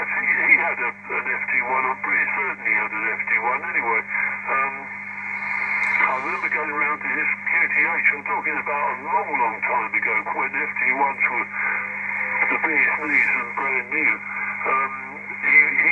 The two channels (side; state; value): both; identical; correlation 1.00